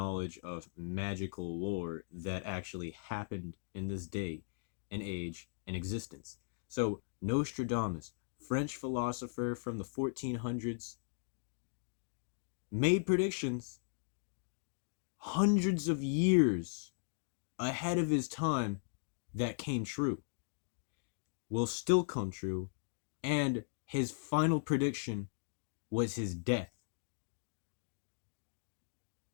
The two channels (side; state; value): right; silent; digital silence